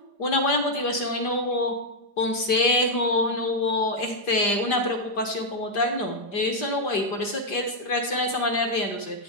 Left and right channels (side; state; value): right; late; 5.0 ms